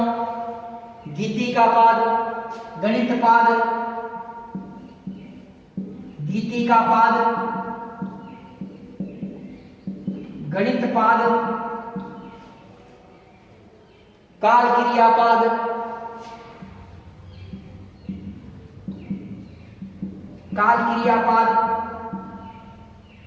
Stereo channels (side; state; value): both; identical; correlation 1.00